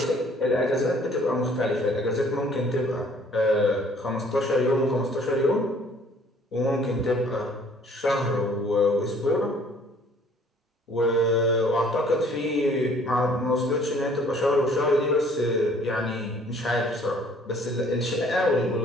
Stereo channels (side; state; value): both; normal; correlation 0.57